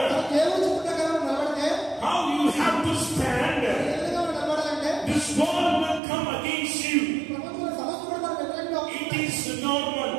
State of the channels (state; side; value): drops out; left; at 6.0 s